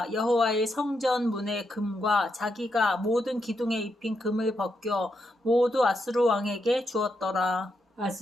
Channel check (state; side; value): normal; both; correlation 0.82